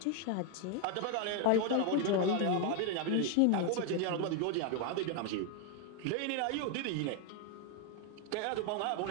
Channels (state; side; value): different; both; correlation 0.01